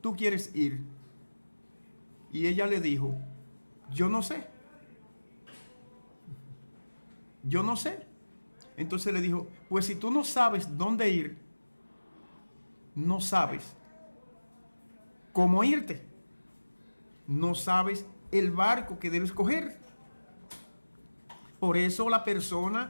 quieres ir? Y ella le dijo, yo no sé. Yo no sé. Entonces le dijo, pues si tú no sabes dónde ir, no sabes cómo irte. No sabes el barco que debes coger. Por eso la persona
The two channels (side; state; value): both; inverted; correlation -1.00